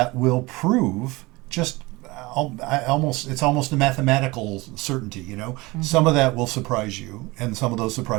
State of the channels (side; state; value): left; quieter; 22.7 dB